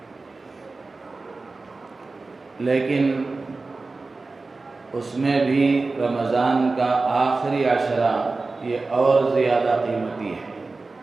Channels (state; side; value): quieter; left; 3.7 dB